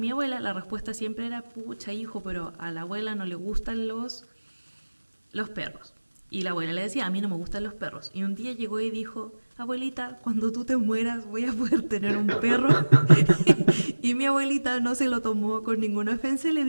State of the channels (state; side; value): inverted; both; correlation -1.00